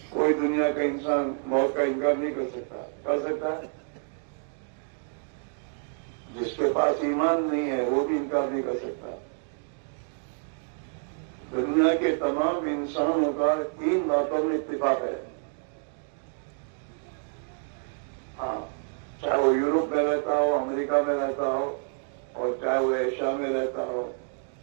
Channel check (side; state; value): left; silent; 59 dB below the other